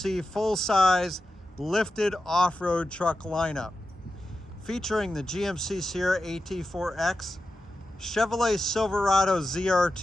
full-size lifted off-road truck lineup. Featuring the GMC Sierra AT4X, Chevrolet Silverado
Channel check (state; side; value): normal; both; correlation 0.91